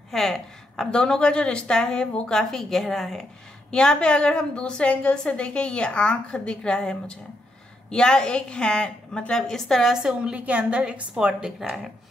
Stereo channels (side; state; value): both; normal; correlation 0.79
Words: है, आप दोनों का जो रिश्ता है वो काफ़ी गहरा है। यहाँ पे अगर हम दूसरे एंगल से देखें, ये आँख दिख रहा है मुझे, या एक हैंड, मतलब इस तरह से उंगली के अंदर एक स्पॉट दिख रहा है,